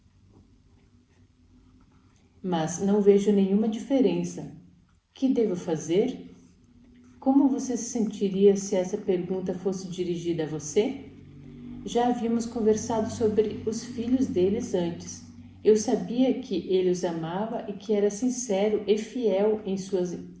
mas não vejo nenhuma diferença. O que devo fazer? Como você se sentiria se essa pergunta fosse dirigida a você? Já havíamos conversado sobre os filhos deles antes. Eu sabia que ele os amava e que era sincero e fiel em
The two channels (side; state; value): both; identical; correlation 1.00